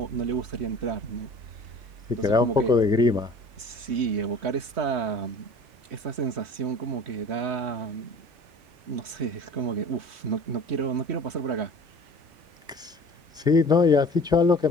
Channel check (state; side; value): late; left; 3.1 ms